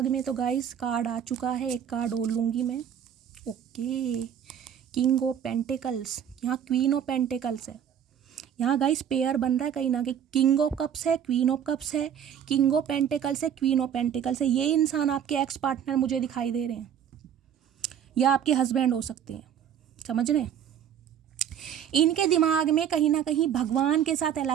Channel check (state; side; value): quieter; left; 9.1 dB